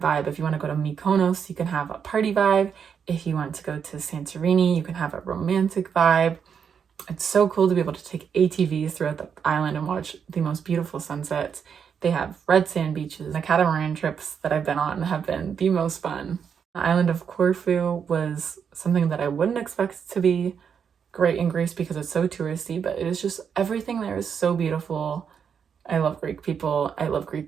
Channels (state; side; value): quieter; left; 7.1 dB